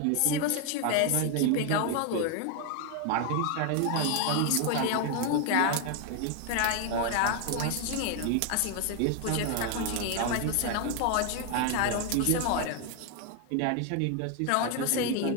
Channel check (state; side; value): different; both; correlation 0.01